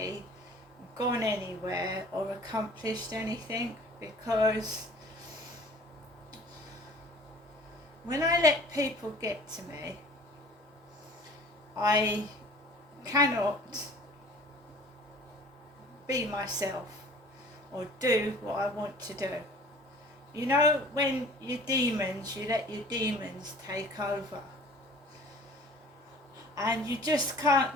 gone anywhere or accomplished anything, because when I let people get to me, I cannot be myself or do what I want to do. You know, when your demons, you let your demons take over, and you just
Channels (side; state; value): both; normal; correlation 0.48